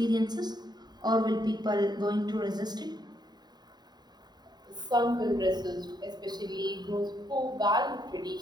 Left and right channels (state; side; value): late; left; 0.20 ms